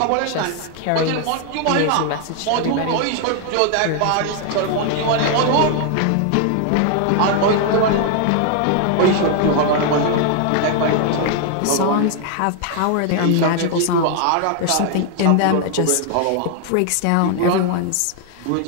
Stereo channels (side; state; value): both; different; correlation 0.00